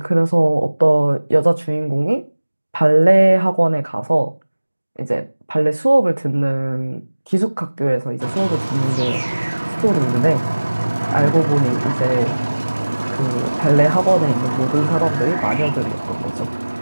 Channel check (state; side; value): inverted; both; correlation -1.00